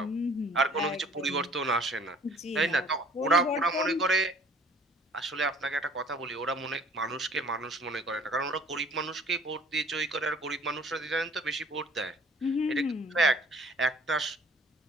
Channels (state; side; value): normal; both; correlation 0.53